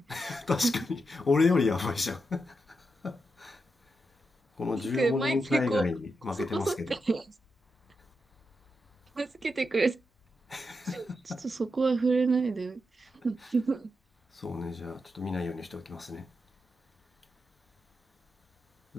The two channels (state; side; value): normal; both; correlation 0.86